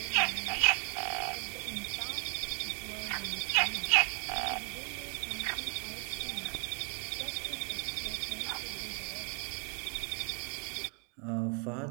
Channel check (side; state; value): left; quieter; 35.4 dB